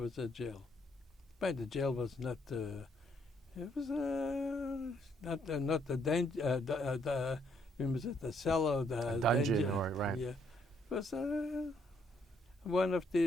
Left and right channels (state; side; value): normal; both; correlation 0.71